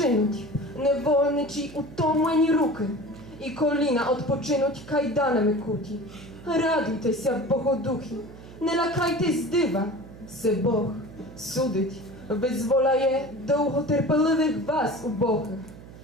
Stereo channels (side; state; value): right; noise; hum, 17 dB below the sound